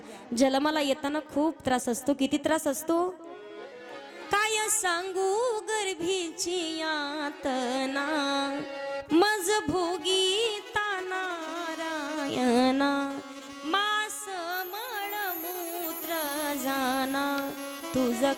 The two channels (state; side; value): identical; both; correlation 1.00